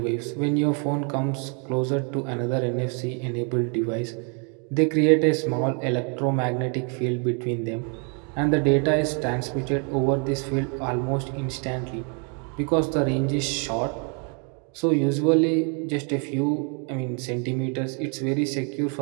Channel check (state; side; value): quieter; left; 38.1 dB